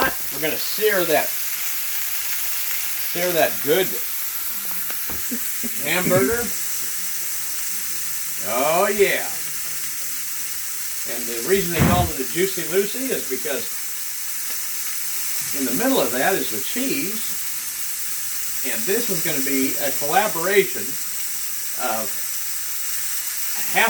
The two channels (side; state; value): both; identical; correlation 1.00